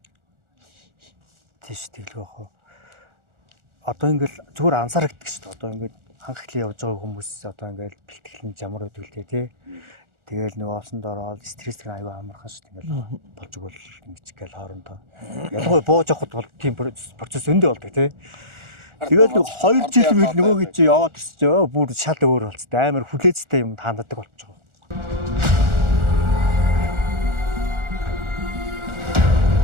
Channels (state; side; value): late; left; 1.4 ms